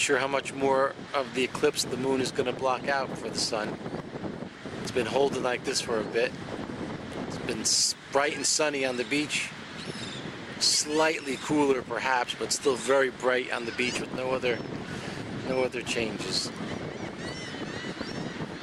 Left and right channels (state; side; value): identical; both; correlation 1.00